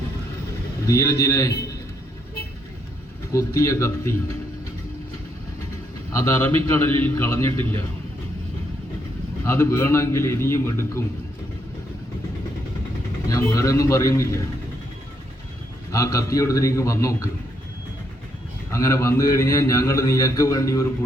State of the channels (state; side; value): normal; both; correlation 0.74